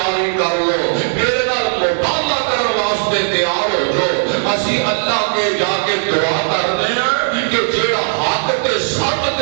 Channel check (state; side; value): silent; left; digital silence